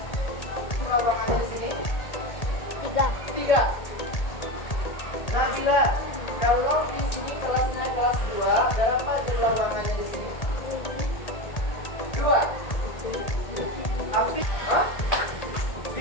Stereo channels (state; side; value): late; right; 1.8 ms